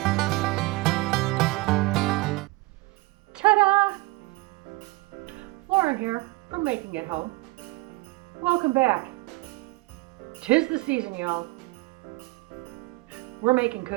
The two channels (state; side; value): quieter; left; 22.9 dB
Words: Ta-da! Lauren here from Making It Home. Welcome back. 'Tis the season, y'all. We're making